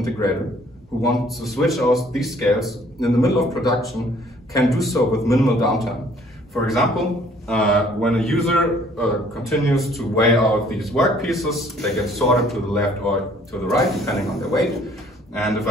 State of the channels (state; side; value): normal; both; correlation 0.59